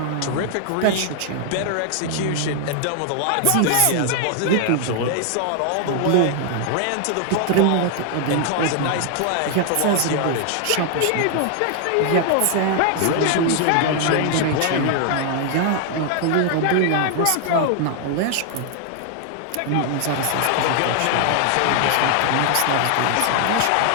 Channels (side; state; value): both; different; correlation 0.00